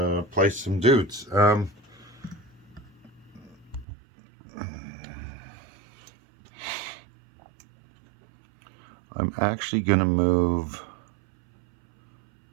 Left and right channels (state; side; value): drops out; left; at 3.9 s